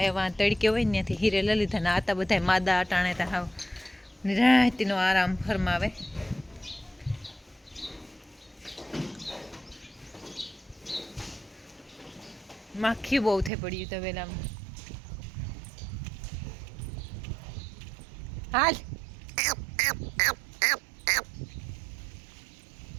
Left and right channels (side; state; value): left; drops out; at 13.5 s